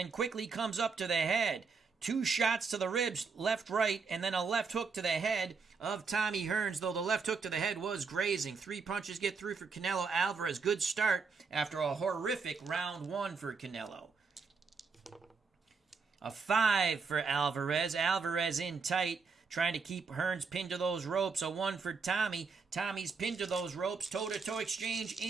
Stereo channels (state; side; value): quieter; left; 5.0 dB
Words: quickly comes up to the head. 2 shots to the ribs, left, right, and then a left hook to the head of Tommy Hearns, though the left hook to the head was grazing. 3 punches get through for Canelo Alvarez. Good start after a horrific round 1 for Canelo. A 5 for Alvarez. Alvarez in tight, trying to keep Hearns pinned to those ropes. A 1 for Tommy. Tommy's pinned to those ropes. Toe-to-toe exchange